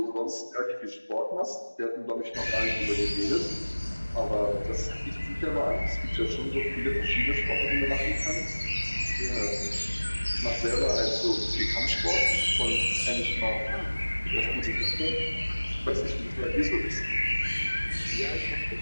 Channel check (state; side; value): inverted; both; correlation -1.00